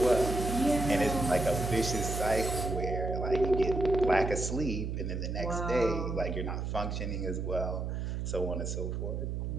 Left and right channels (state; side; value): noise; right; hum, 3 dB below the sound